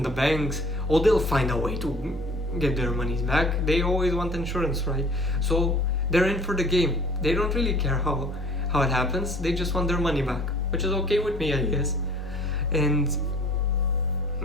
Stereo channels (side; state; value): both; normal; correlation 0.50